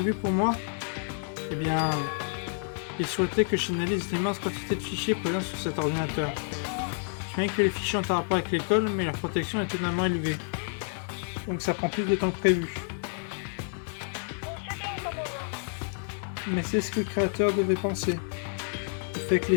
pour moi? Eh bien, il souhaitait que j'analyse l'immense quantité de fichiers présents sur cet ordinateur. Je sais que les fichiers ont un rapport avec l'école, mais leur protection est étonnamment élevée. Donc ça prend plus de temps que prévu. Mais c'est ce que le créateur devait penser. Le fait que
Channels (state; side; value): silent; right; digital silence